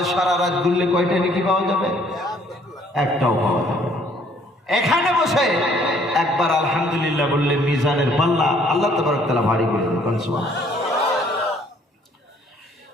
সারা রাত ঘুরলে কয়টা নেকি পাওয়া যাবে? একটাও পাওয়া যাবে। এখানে বসে একবার আলহামদুলিল্লাহ বললে মিজানের পাল্লা আল্লাহ তাবারক তাআলা ভারী করে দেন। সুবহানাল্লাহ,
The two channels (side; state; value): both; normal; correlation 0.61